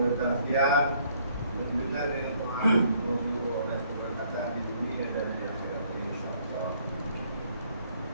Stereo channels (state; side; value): inverted; both; correlation -0.65